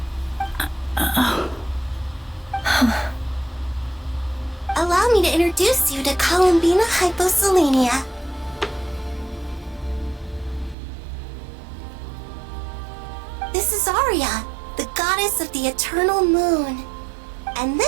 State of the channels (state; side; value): drops out; left; at 10.8 s